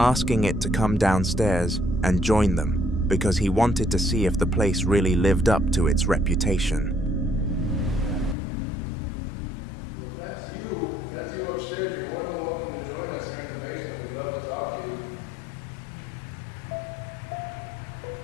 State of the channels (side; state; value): right; drops out; at 8.3 s